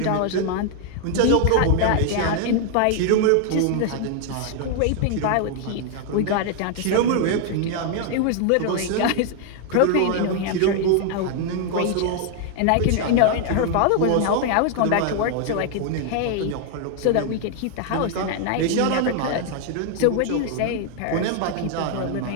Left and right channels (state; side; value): different; both; correlation 0.00